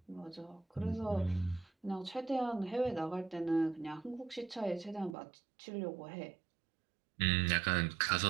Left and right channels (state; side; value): drops out; left; at 5.2 s